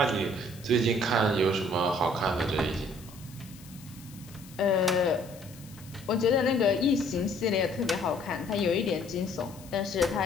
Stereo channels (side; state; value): left; noise; hiss, 21 dB below the sound